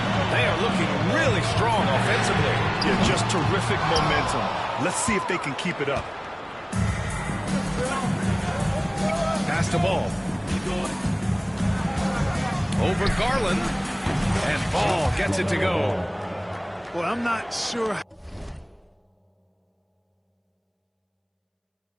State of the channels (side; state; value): both; identical; correlation 1.00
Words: They are looking really strong offensively. Yeah, just terrific momentum. Let's see if they can keep it up. Pass the ball. Over Garland. And Ball gets it to go. Well, I'm not sure